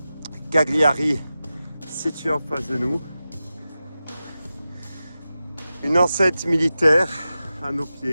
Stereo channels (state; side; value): inverted; both; correlation -0.93